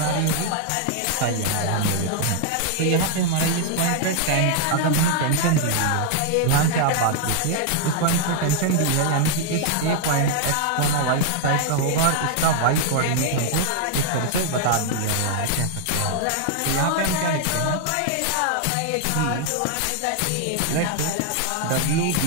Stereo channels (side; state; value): both; different; correlation 0.00